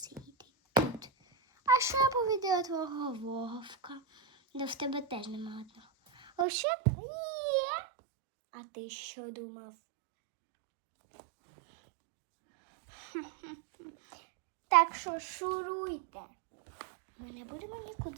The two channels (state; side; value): drops out; left; at 6.5 s